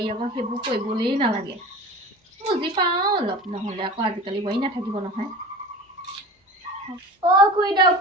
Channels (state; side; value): normal; both; correlation 0.36